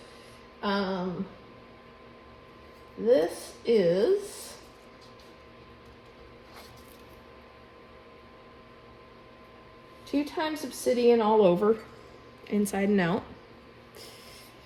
This is two times obsidian all over, inside and out.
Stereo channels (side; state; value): both; identical; correlation 1.00